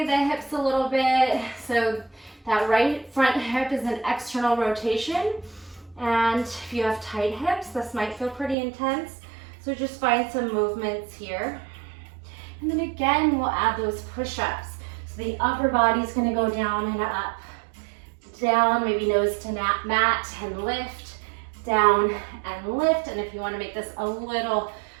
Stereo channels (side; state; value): left; drops out; at 8.6 s